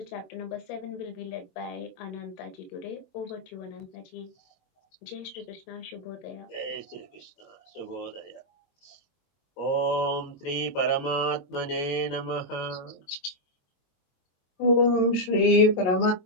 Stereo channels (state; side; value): late; right; 22 ms